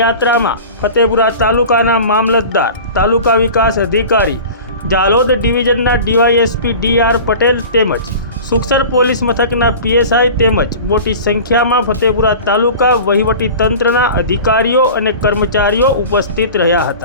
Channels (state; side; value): inverted; both; correlation -0.37